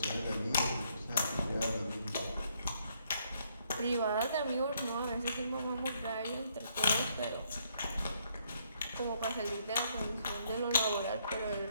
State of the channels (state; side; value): inverted; both; correlation -0.71